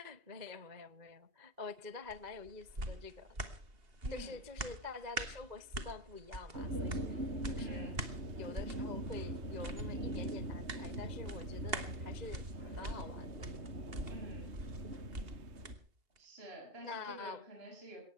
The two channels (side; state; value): left; late; 2.8 ms